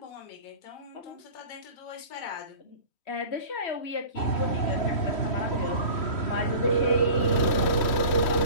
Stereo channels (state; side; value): late; right; 3.1 ms